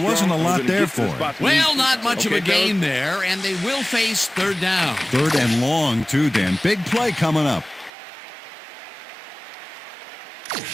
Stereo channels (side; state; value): left; drops out; at 7.9 s